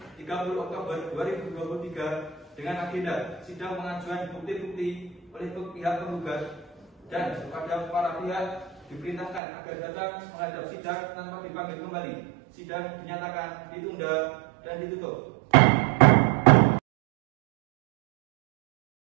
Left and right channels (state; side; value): drops out; left; at 9.4 s